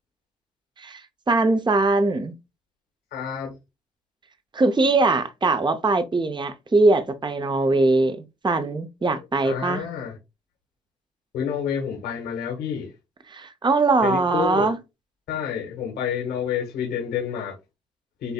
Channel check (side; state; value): both; normal; correlation 0.62